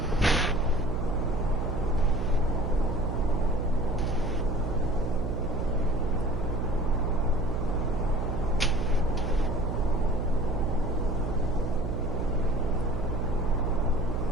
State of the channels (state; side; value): noise; right; hum, 3 dB below the sound